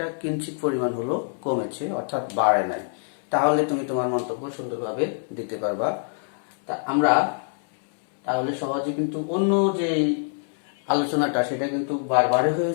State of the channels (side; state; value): right; silent; 62 dB below the other